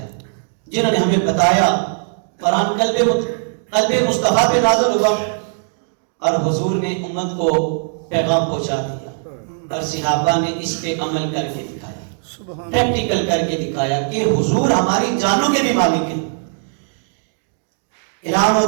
جنہوں نے ہمیں بتایا. قرآن قلب مصطفیٰ پہ نازل ہوا اور حضور نے امت کو پیغام پہنچا دیا اور صحابہ نے اس پہ عمل کر کے دکھایا, پریکٹیکل کر کے دکھایا کہ حضور ہماری جانوں کے بھی مالک ہیں. اعلان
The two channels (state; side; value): silent; left; digital silence